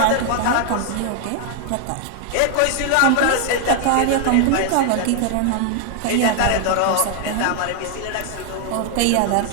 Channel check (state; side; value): different; both; correlation 0.00